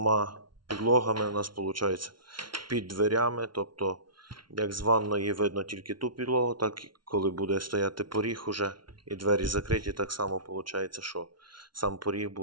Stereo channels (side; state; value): left; late; 0.72 ms